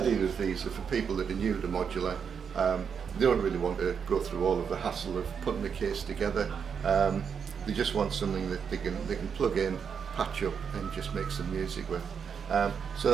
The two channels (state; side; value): quieter; left; 6.8 dB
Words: of these are for people that are new to modular. They don't really want to go through all of the hassle of putting the case together. They just want something that they can plug in, patch up, and just make some music with.